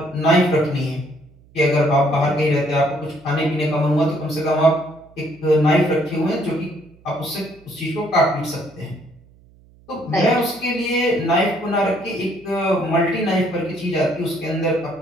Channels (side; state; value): right; noise; hum, 28 dB below the sound